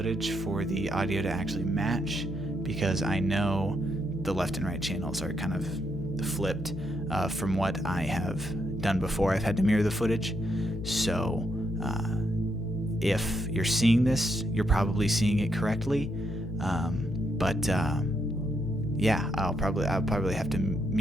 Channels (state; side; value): noise; left; hum, 9 dB below the sound